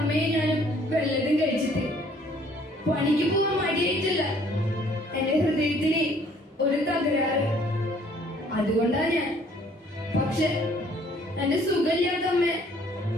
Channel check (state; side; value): normal; both; correlation 0.59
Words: ഞാനും വല്ലതും കഴിച്ചിട്ട്. പണിക്ക് പോവാൻ മടിയായിട്ടില്ല. എന്റെ ഹൃദയത്തിന് ഒരു തകരാറ്. അതുകൊണ്ടാ ഞാൻ. പക്ഷെ എന്റെ സുഖമില്ലാത്ത അമ്മയെ